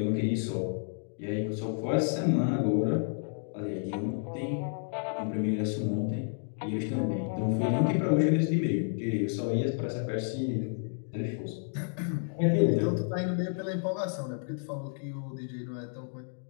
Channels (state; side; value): silent; right; digital silence